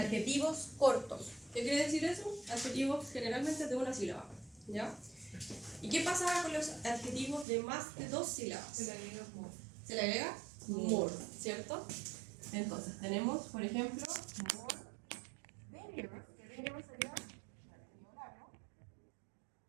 cortos. ¿Qué quiere decir eso? Adjetivos generalmente de una sílaba. ¿Ya? ¿Y qué pasaba con los adjetivos de más de dos sílabas? Se le agrega more. Se le agrega more, ¿cierto? Entonces, tenemos, por ejemplo, more dangerous, que dangerous sería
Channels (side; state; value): left; drops out; at 7.5 s